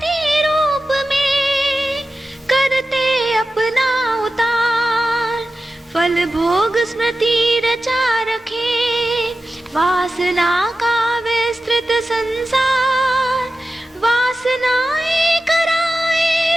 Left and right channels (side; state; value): both; normal; correlation 0.93